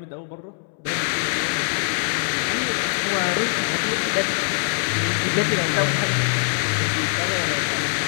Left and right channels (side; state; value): right; silent; 64 dB below the other